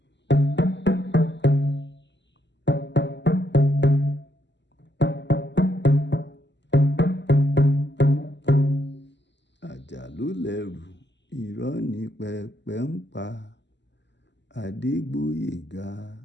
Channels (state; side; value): late; right; 0.51 ms